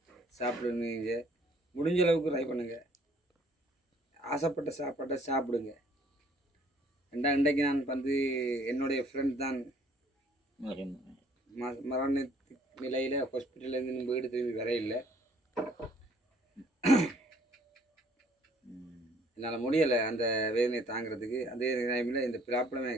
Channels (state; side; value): normal; both; correlation 0.60